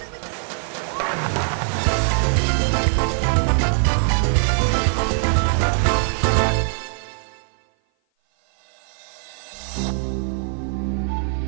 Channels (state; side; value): silent; left; 56 dB below the other